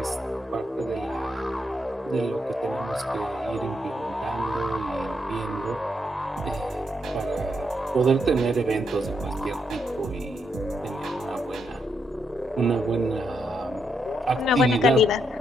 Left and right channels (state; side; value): normal; both; correlation 0.79